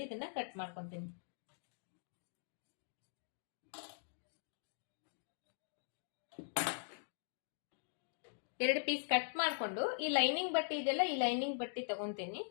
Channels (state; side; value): silent; right; digital silence